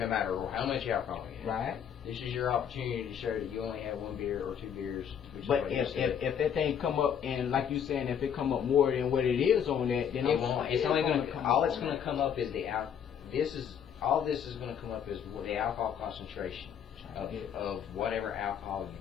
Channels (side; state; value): right; quieter; 8.3 dB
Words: matter how much alcohol you have. Right. This is your opportunity to show that you only have 1 beer or 2 beers. Which is But what you if said. that thing come up and like you saying, if it come up more than what it is on that, then It won't. It's only going to come all up it's on going to that. come up is all this is going to come up is the alcohol concentration of whatever alcohol